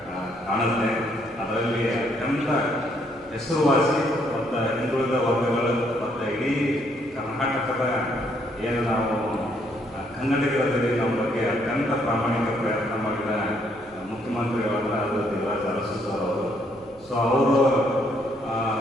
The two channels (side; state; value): right; noise; hum, 26 dB below the sound